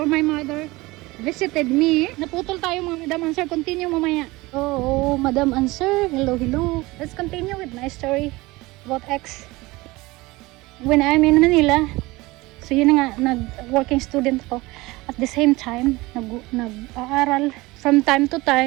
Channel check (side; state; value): left; quieter; 21.3 dB